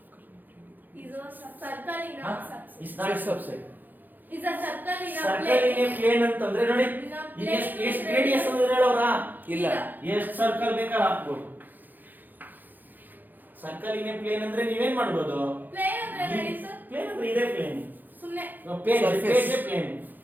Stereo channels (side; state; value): left; late; 0.086 ms